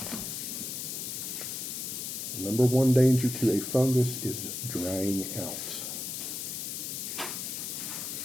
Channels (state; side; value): noise; left; hiss, 4 dB below the sound